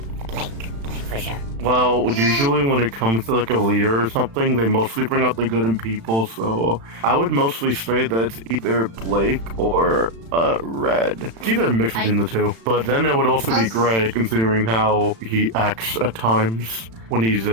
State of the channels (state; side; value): late; left; 36 ms